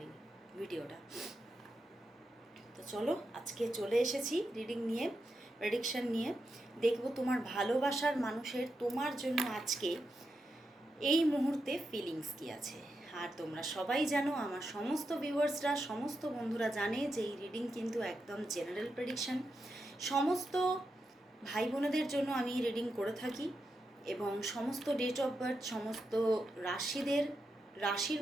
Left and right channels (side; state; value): both; normal; correlation 0.86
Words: ভিডিওটা। তো চলো, আজকে চলে এসেছি রিডিং নিয়ে, প্রেডিকশন নিয়ে। দেখবো তোমার ভালোবাসার মানুষের তোমার জন্য আজকে এই মুহূর্তে ফিলিংস কী আছে। আর তোমরা সবাই জানো, আমার সমস্ত ভিউয়ার্সরা, সমস্ত বন্ধুরা জানে যে এই রিডিং কিন্তু একদম জেনারেল প্রেডিকশন। সমস্ত ভাই বোনেদের জন্য আমি রিডিং করে থাকি, এবং সমস্ত ডেট অফ বার্থ, সমস্ত রাশির